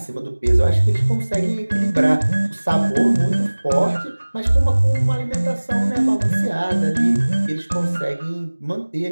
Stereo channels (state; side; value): inverted; both; correlation -1.00